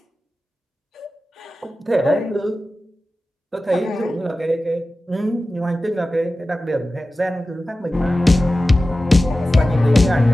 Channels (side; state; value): both; normal; correlation 0.95